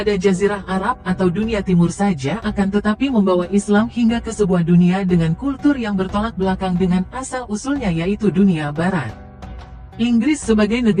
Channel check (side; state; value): both; identical; correlation 1.00